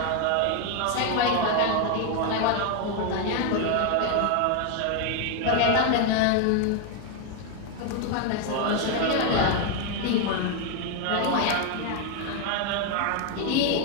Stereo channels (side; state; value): both; different; correlation 0.01